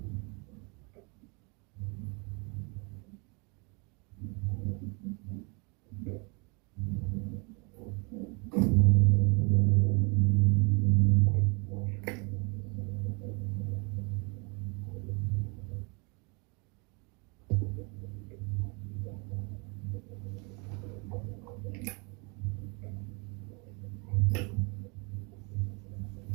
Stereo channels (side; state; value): left; quieter; 31.9 dB